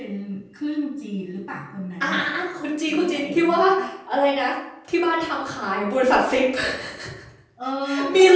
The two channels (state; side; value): identical; both; correlation 1.00